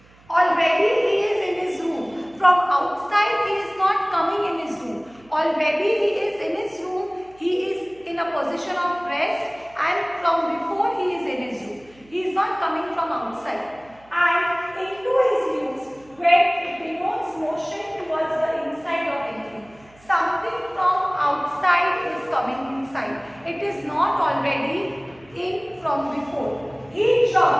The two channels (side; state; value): right; noise; hum, 28 dB below the sound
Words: Already he is in his room. From outside he is not coming in his room. Already he is in his room. He is in a position of rest, and from before he is in his room. He is not coming from outside. And into is used when it denotes motion towards the inside of anything. Something from outside is coming inside. It is not already in from before. He